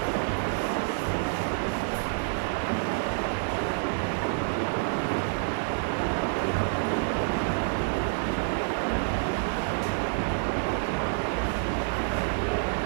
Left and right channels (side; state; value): left; silent; digital silence